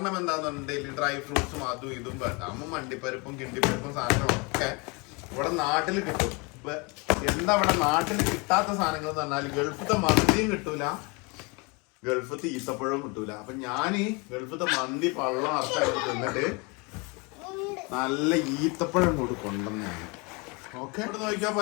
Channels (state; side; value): quieter; right; 29.1 dB